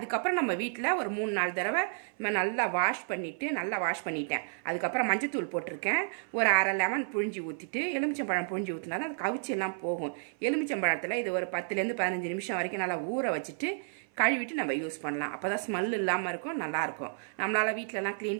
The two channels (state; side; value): silent; left; 57 dB below the other